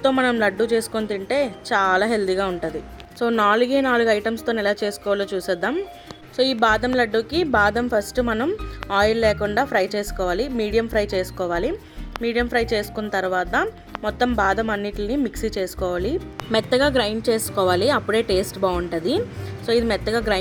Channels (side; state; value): both; identical; correlation 1.00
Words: మనం లడ్డు చేసుకొని తింటే చాలా హెల్దీగా ఉంటుంది. సో 4 ఐటమ్స్తో ఎలా చేసుకోవాలో చూసేద్దాం. సో ఈ బాదం లడ్డూకి బాదం ఫస్ట్ మనం ఆయిల్ లేకుండా ఫ్రై చేసుకోవాలి, మీడియం ఫ్రై చేసుకోవాలి. మీడియం ఫ్రై చేసుకున్న తర్వాత మొత్తం బాదం అన్నిటిని మిక్సీ చేసుకోవాలి, మెత్తగా గ్రైండ్ చేసుకోవాలి, అప్పుడే టేస్ట్ బాగుంటుంది. సో ఇది మెత్తగా